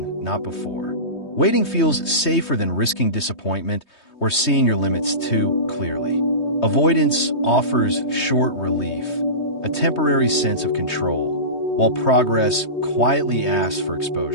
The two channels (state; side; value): late; right; 3.2 ms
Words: not before. Waiting feels safer than risking disappointment or seeing your limits too clearly. Avoidance offers short relief, a temporary sense of control, while progress quietly asks for